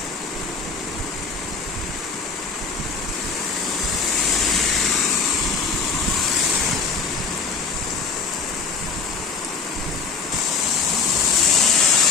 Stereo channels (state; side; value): quieter; right; 4.9 dB